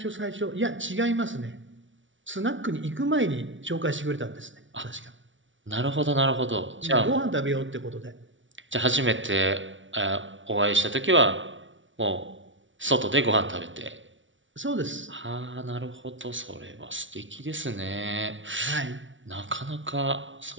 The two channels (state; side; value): late; left; 0.56 ms